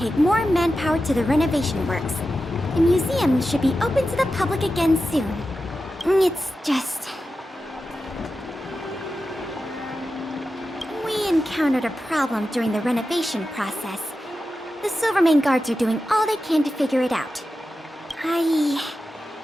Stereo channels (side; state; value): both; normal; correlation 0.92